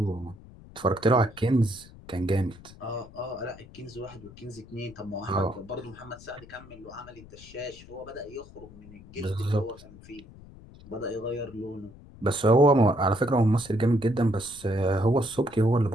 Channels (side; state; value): left; noise; rumble, 20 dB below the sound